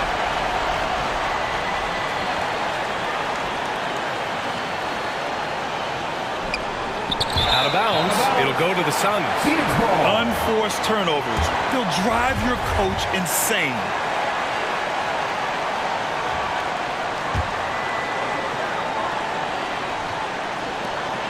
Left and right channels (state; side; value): identical; both; correlation 1.00